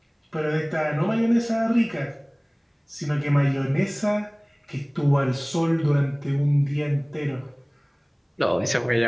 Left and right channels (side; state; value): both; identical; correlation 1.00